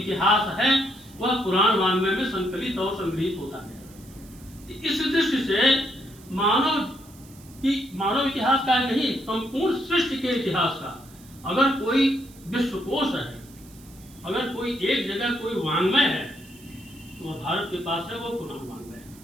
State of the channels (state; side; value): noise; right; hiss, 23 dB below the sound